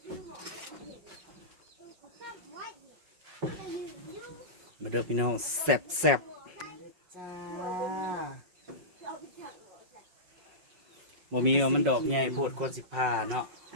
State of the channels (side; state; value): left; late; 5.4 ms